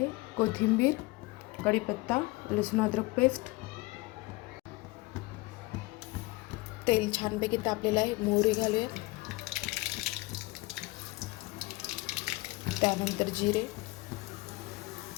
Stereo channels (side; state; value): right; quieter; 22.5 dB